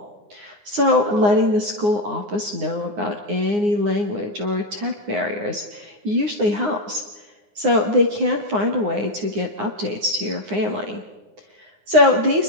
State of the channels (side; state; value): left; late; 9.7 ms